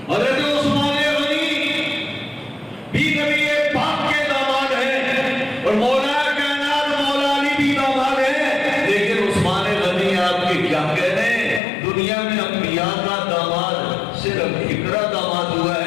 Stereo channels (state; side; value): drops out; right; at 11.6 s